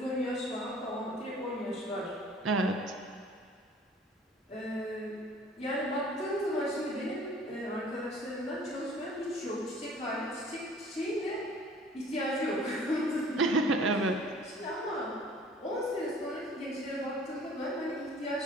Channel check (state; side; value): normal; both; correlation 0.51